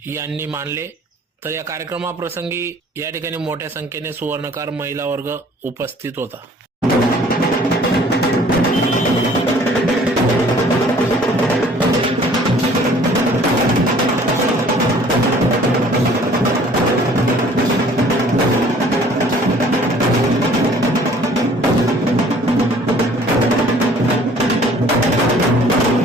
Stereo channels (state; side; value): normal; both; correlation 0.54